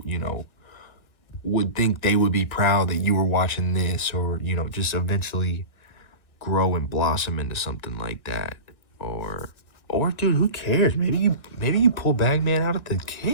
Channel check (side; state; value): right; late; 1.6 ms